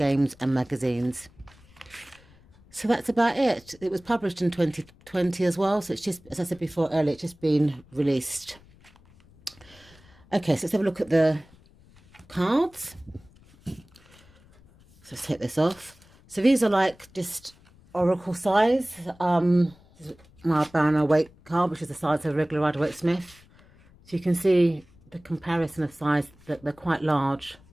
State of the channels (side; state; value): left; noise; rumble, 27 dB below the sound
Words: and magazines. So that's about it. It was published in 2020 as well. So it's just, as I said before earlier, it's just been released. Okay, so let's have a look at the cards. So let's take this off. So these are like just oracle size. This is my Banner weight card, which is the size of a regular Rider-Waite Smith. So you can see the comparison of size, that they're quite large,